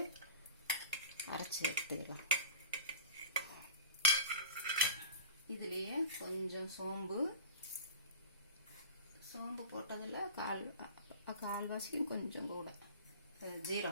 அரைச்சி எடுத்துக்கலாம். இதுலேயே கொஞ்சம் சோம்பு போட்டதில் கால்வாசியும் கொஞ்சம் கூட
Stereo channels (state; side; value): inverted; both; correlation -0.38